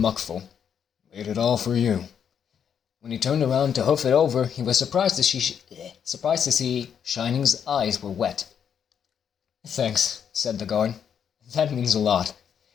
"Made it all for you." When he turned around to hoof it over, he was surprised to see Shining's eyes were wet. "Thanks," said the guard. "That means a lot."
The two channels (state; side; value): quieter; right; 8.0 dB